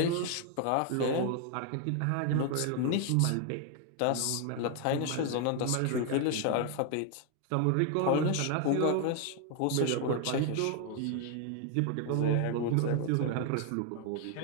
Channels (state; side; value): different; both; correlation 0.00